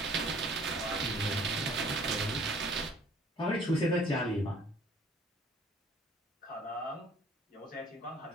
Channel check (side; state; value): both; normal; correlation 0.55